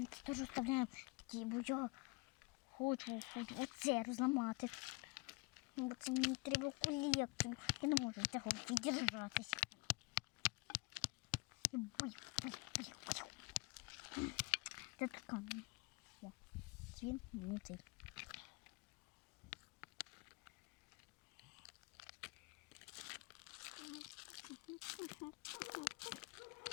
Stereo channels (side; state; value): right; quieter; 27.2 dB